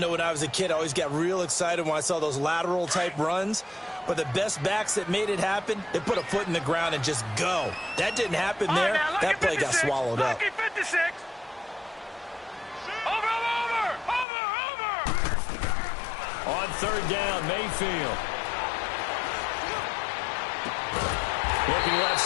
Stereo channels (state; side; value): drops out; right; at 14.2 s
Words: when I was a kid, I always got real excited when I saw those lateral-type runs. But the best backs that made it happen, they put a foot in the ground and just go. That didn't happen there. That play got swallowed up. On third down, Mayfield. Looking left